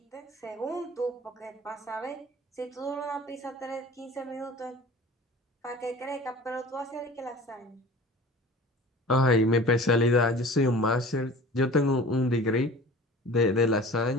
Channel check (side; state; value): both; normal; correlation 0.42